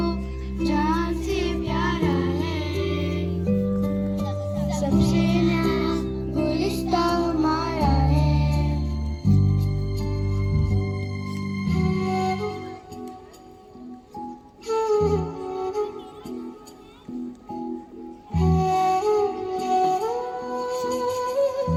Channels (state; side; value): identical; both; correlation 1.00